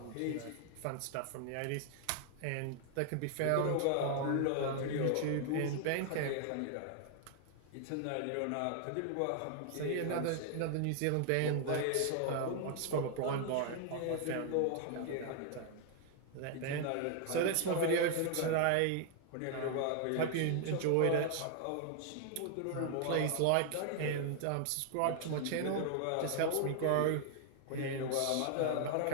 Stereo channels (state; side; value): different; both; correlation 0.00